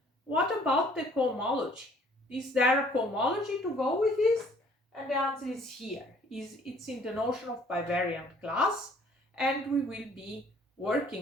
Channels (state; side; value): normal; both; correlation 0.58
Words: what about the cohomology? Is there a cohomology to go with this? And the answer is here. It's in the notion of bivariant class, and we will be